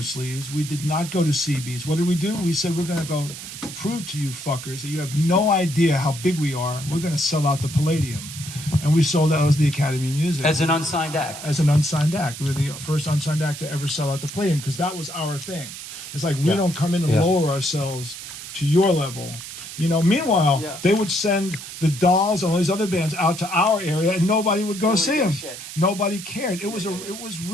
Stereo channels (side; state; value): right; noise; hiss, 11 dB below the sound